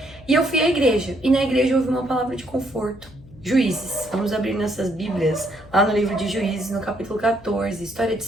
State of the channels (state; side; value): noise; left; hum, 22 dB below the sound